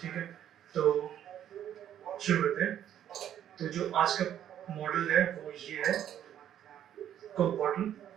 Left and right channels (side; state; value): left; quieter; 10.5 dB